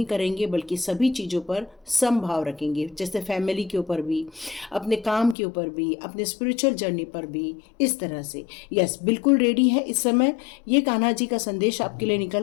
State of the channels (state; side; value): drops out; right; at 5.4 s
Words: करेंगे, बल्कि सभी चीज़ों पर समभाव रखेंगे। जैसे फैमिली के ऊपर भी, अपने काम के ऊपर भी, अपने स्पिरिचुअल जर्नी पर भी, इस तरह से। यस, बिल्कुल रेडी है इस समय। ये कान्हा जी का संदेश आपके लिए